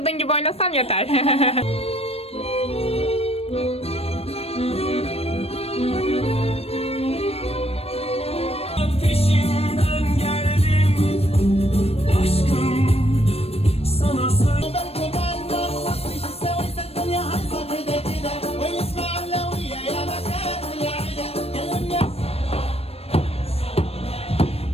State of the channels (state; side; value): late; right; 0.29 ms